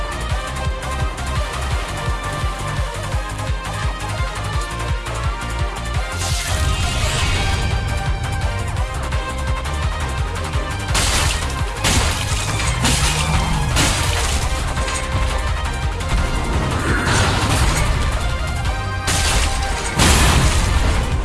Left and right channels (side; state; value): both; identical; correlation 1.00